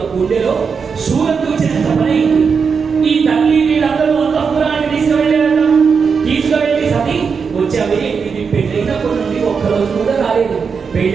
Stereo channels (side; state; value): left; quieter; 5.8 dB